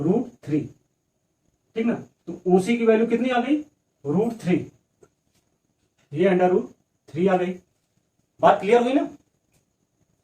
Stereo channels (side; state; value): both; identical; correlation 1.00